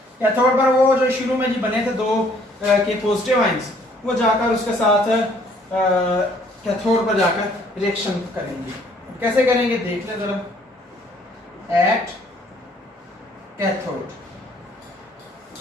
कैथोड पर वो जो शुरू में जी बने थे 2 के पॉजिटिव आयंस, वो जाकर उसके साथ कैथोड पर जाकर रिएक्शन करेंगे। कैसे करेंगे देख ले जरा, एट कैथोड।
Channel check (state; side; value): normal; both; correlation 0.61